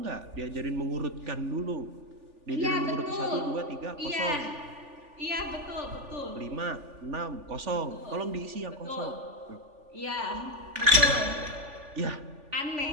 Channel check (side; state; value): left; late; 3.4 ms